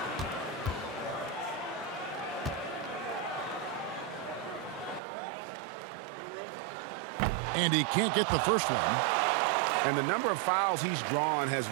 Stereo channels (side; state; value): left; drops out; at 5.0 s